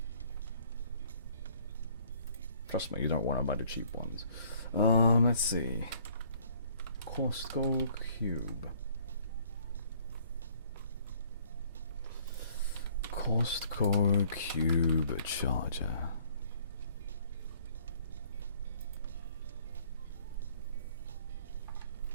Trust me, you don't want to buy the cheap ones. Let's see. Costco Cube. Costco Cube charger.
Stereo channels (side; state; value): both; inverted; correlation -0.59